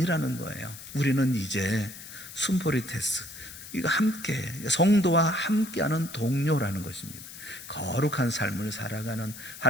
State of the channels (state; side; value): noise; left; hiss, 14 dB below the sound